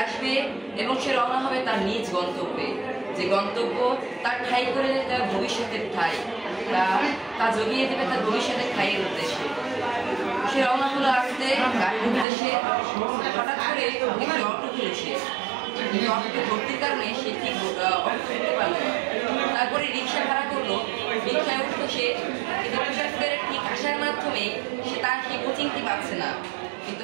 আসবে এবং সে রওনা হবে তার নিজ গন্তব্যে, যে গন্তব্য তার ঠাঁই করে তার ভবিষ্যতের ঠাঁই, তা জগিয়ে দেবে তার ভবিষ্যতের ঠাঁইয়ের উদ্দেশ্যে। সে রওনা হলো আসতে গাড়ির উদ্দেশ্যে। হঠাৎ করে একটি অটো ঘুরেছে, অটোতে ভর্তির কারণে সে ঠিক অটো উঠতে পারল না। তারপরে রিক্সা ভাড়া করলো, রিক্সায় উঠলো সে, কিন্তু তুষার স্কয়ারে ঠিক আসার মাধ্যমে সে তার সেই কোচিংটি পাচ্ছে না। কিন্তু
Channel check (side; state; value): left; drops out; at 12.2 s